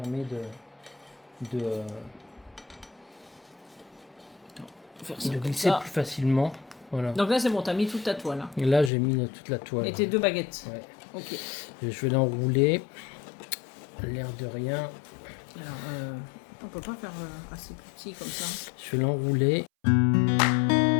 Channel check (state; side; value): drops out; right; at 8.9 s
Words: Faire ça de comme glisser ça. plus facilement. Voilà. Donc là c'est bon, t'as mis toute ta toile. Hein. Et là j'ai mis toute la toile. Et tes 2 baguettes. Ouais. Ok. Et je vais l'enrouler. L'air de rien. Alors, on peut pas faire assez petit comme ça. Je vais l'enrouler.